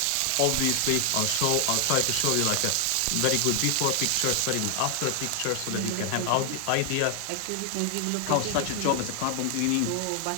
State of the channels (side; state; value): both; different; correlation 0.00